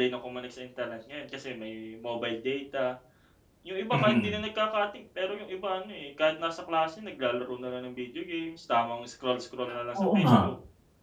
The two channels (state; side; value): identical; both; correlation 1.00